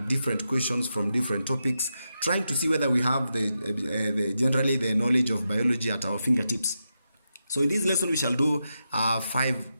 different questions from different topics, trying to see whether we have generally the knowledge of biology at our fingertips. So in this lesson we shall do 5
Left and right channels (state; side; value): inverted; both; correlation -0.87